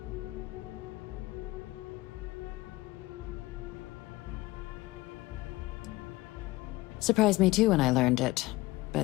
Surprised me too when I learned it,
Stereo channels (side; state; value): right; quieter; 19.5 dB